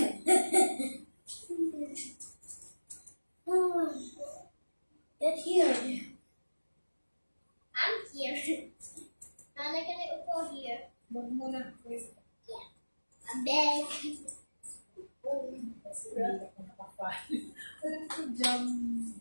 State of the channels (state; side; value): inverted; both; correlation -1.00